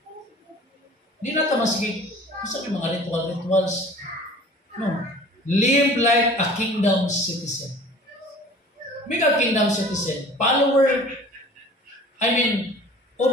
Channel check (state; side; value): normal; both; correlation 0.46